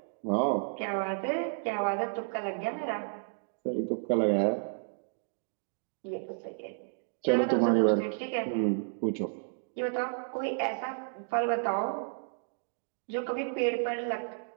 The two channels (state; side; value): silent; left; digital silence